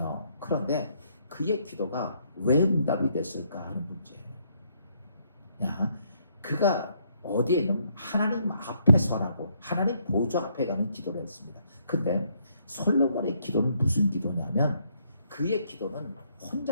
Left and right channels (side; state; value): both; inverted; correlation -0.71